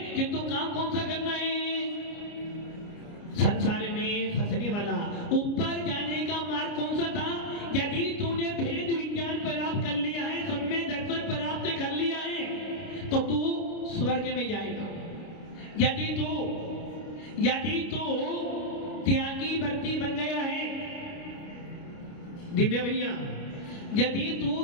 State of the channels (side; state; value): right; late; 29 ms